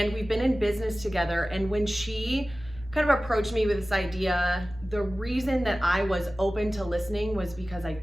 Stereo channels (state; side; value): normal; both; correlation 0.96